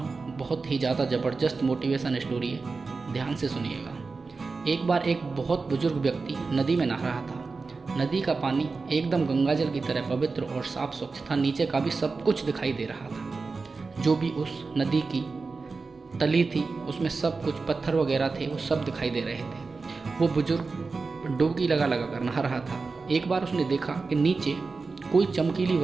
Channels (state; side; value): quieter; left; 4.2 dB